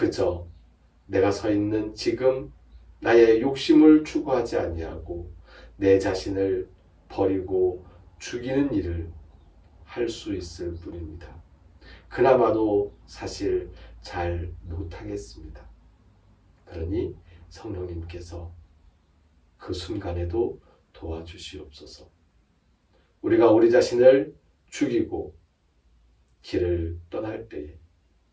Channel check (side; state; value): both; identical; correlation 1.00